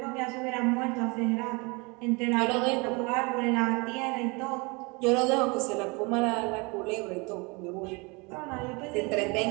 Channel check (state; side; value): quieter; left; 28.4 dB